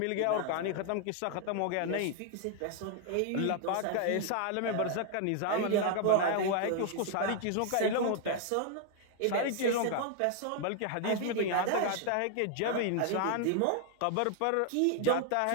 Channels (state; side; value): different; both; correlation 0.00